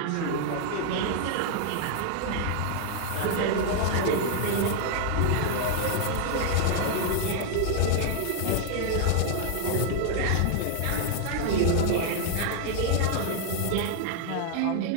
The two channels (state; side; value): different; both; correlation 0.00